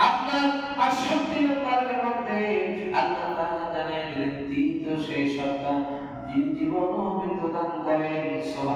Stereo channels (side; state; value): both; identical; correlation 1.00